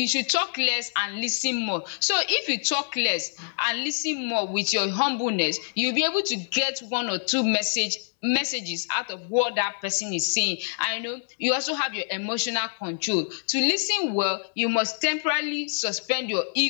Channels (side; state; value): right; silent; digital silence